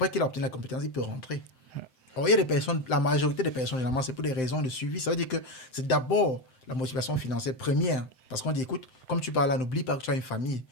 qu'il a obtenu la compétence, il peut rentrer. Or, il y a des personnes, la majorité des personnes, généralement, c'est pour des raisons de suivi. Ça veut dire que c'est d'abord la motivation financière première. Parce qu'on dit, écoute, comme tu parles là, n'oublie pas que tu as une famille,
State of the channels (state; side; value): late; right; 7.7 ms